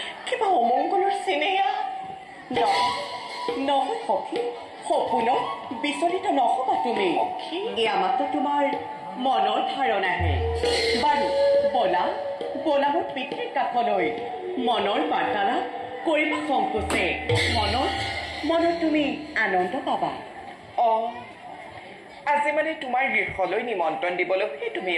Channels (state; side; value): identical; both; correlation 1.00